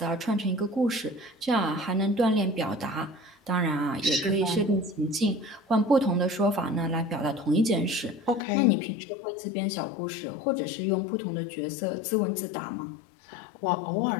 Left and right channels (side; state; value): right; drops out; at 8.4 s